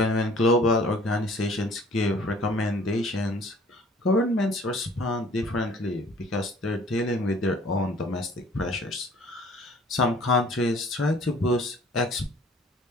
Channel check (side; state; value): both; normal; correlation 0.53